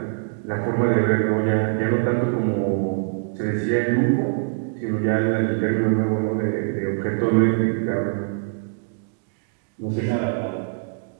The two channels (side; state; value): left; silent; digital silence